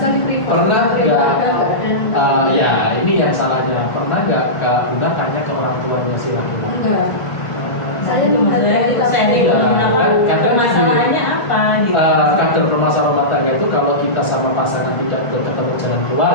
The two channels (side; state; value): right; late; 1.5 ms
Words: privat. Pernah nggak? Ada. Ya ini yang salahnya. Pernah nggak Kak Bunga tanya ke orang tuanya si laki-laki? Enggak. Saya itu menghadapi kita sharing kadang masalahnya apa gitu. Kadang permasalahan rumah tangga itu kalau kita sama pasangan tidak ketemu jalan